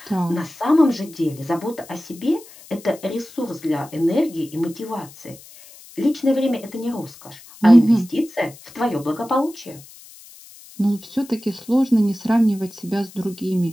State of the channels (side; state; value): left; noise; hiss, 21 dB below the sound